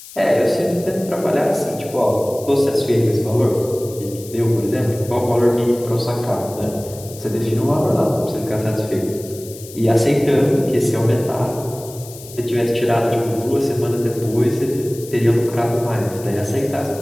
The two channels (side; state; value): left; noise; hiss, 17 dB below the sound